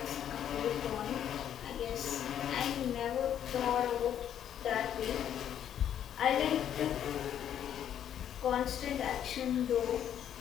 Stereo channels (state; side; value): quieter; right; 9.9 dB